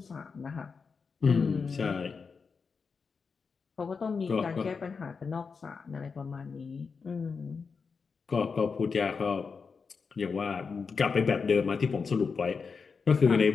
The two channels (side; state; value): right; quieter; 5.2 dB